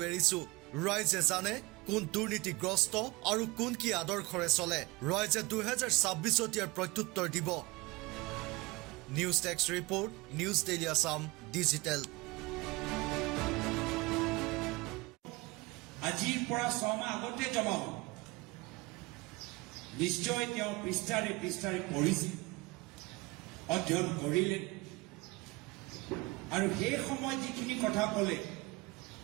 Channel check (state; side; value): quieter; left; 22.9 dB